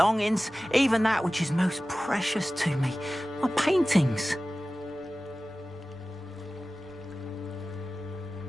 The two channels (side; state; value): both; normal; correlation 0.96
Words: even that which is most precious to me, my paintings.